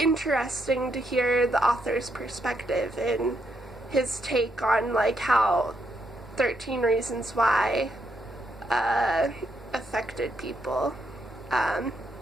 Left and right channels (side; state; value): both; normal; correlation 0.78